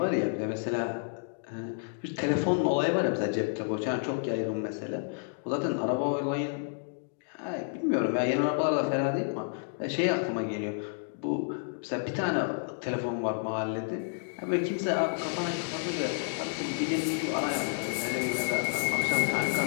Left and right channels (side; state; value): right; silent; digital silence